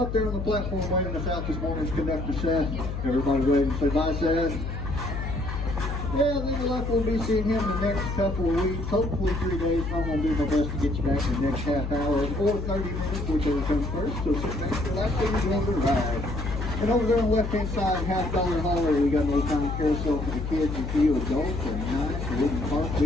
there on the platform waiting us out this morning's Conductor Seth. Everybody wave and say bye, Seth. Yeah, we would like we'll be seeing him the next couple of weeks, hopefully 3 days. I'm going to do my best to get you back in the next half hour or 30 minutes, whichever comes first. So sit back, relax, and enjoy the ride. And over there on the left-hand side, $50 hauler, we got a little time carousel for the kids and few adults, and nice wooden park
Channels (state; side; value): noise; left; hum, 5 dB below the sound